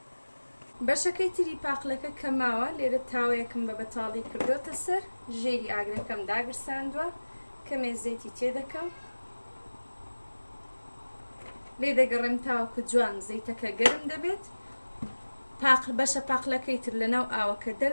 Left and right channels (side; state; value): both; inverted; correlation -1.00